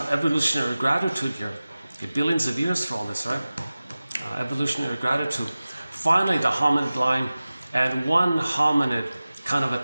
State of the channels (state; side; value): inverted; both; correlation -0.97